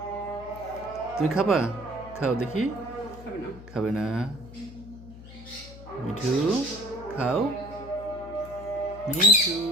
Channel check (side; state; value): left; noise; hum, 16 dB below the sound